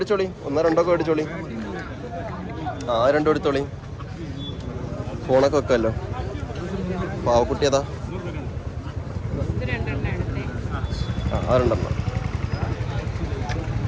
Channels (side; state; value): both; identical; correlation 1.00